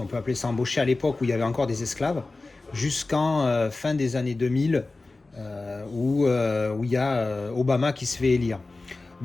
peut appeler ça embauché à l'époque où il y avait encore des esclaves, jusqu'en fin des années 2000, où il y a Obama qui se fait élire.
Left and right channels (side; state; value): right; quieter; 3.4 dB